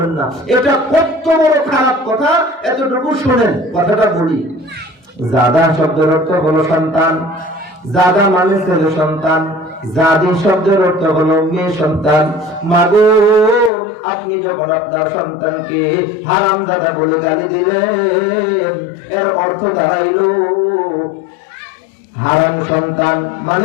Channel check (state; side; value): drops out; right; at 13.7 s